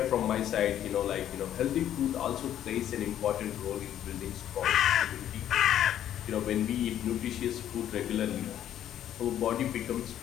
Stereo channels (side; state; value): right; quieter; 11.0 dB